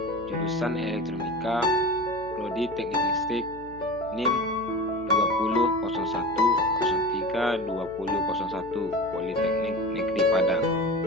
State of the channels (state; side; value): noise; left; hum, 20 dB below the sound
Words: jurusan Elektronika Prodi Teknik Listrik NIM 2001032001 Politeknik Negeri Padang.